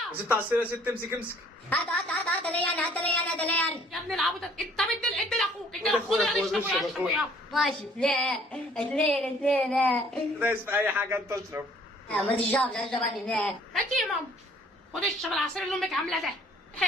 يا. ست عصير يا ست. امسك. هات لي انا. يا ابن العبط انت ادي لاخوك. ادي لاخوك يلا اشربوا يا اشربوا يا. ماشي. لا اثنين. دايس في اي حاجه انت اشرب. ما تشربش اشرب انا. هاتي يا ماما. خد اشرب العصير اللي امك عاملاه ده.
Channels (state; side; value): normal; both; correlation 0.58